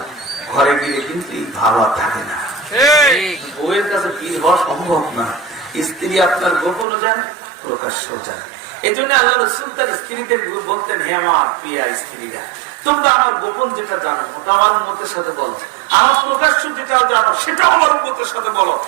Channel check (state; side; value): drops out; left; at 6.9 s